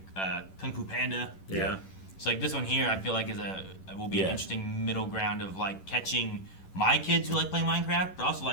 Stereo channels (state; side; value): late; right; 11 ms